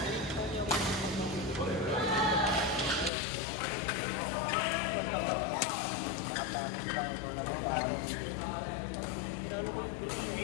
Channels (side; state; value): right; drops out; at 3.1 s